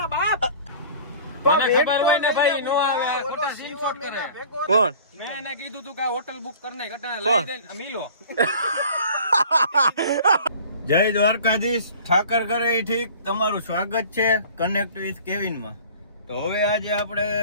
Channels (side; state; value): both; inverted; correlation -0.45